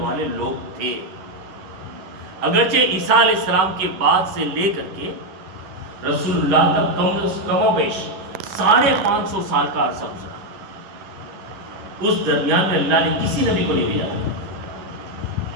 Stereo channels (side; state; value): left; late; 11 ms